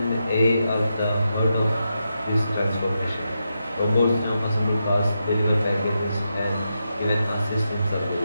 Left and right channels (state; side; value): inverted; both; correlation -0.86